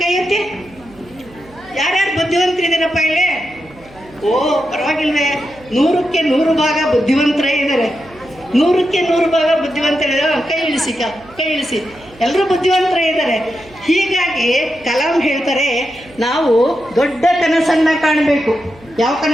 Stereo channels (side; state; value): right; noise; hum, 24 dB below the sound